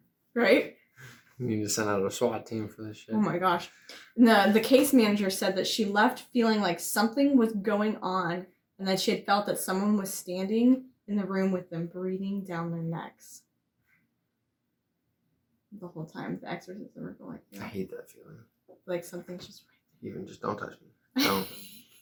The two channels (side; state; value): both; identical; correlation 1.00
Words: Right? You need to send out a SWAT team for this shit. Oh my gosh. The case manager said that she left feeling like something was going on and that she had felt that someone was standing in the room with them, breathing down their necks. The whole time the exorcism were going. I hate that feeling. Like something's just Even just don't touch me. Don't.